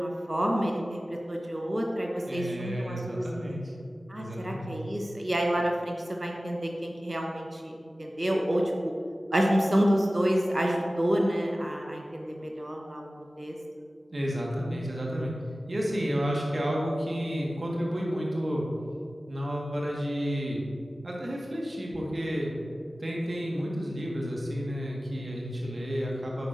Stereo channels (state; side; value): normal; both; correlation 0.96